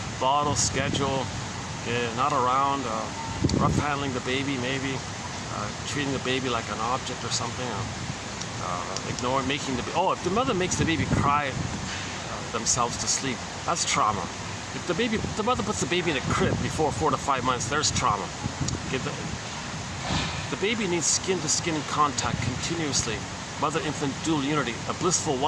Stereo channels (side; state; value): both; identical; correlation 1.00